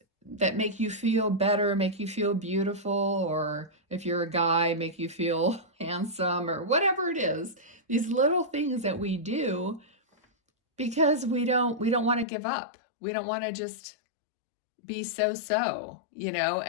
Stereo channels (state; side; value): drops out; right; at 12.2 s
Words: make you feel better, make you feel beautiful, or if you're a guy, make you feel handsome, or whatever it is. These little things that we do because we don't want to give up. We don't want to just be so,